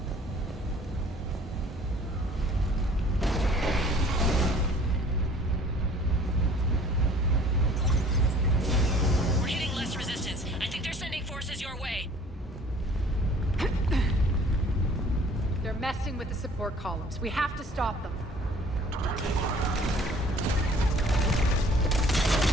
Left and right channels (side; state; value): both; normal; correlation 0.53